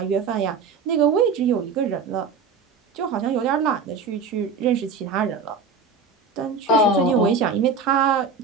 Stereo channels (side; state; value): left; quieter; 4.9 dB